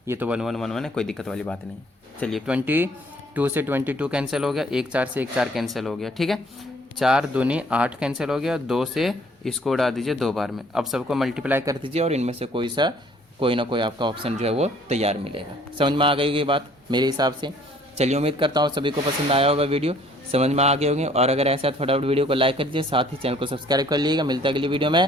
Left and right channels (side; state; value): both; normal; correlation 0.58